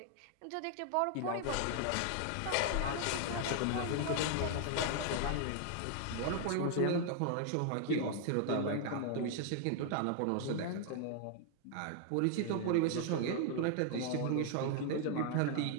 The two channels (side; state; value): both; different; correlation 0.00